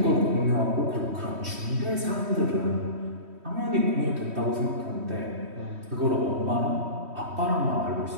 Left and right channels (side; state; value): left; late; 3.1 ms